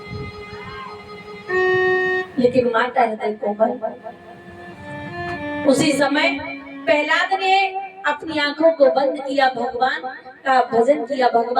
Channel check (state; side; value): identical; both; correlation 1.00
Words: लेकिन माता हृदय कोमल। उसी समय प्रहलाद ने अपनी आंखों को बंद किया, भगवान का भजन किया,